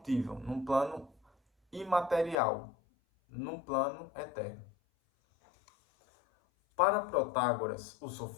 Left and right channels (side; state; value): right; drops out; at 2.4 s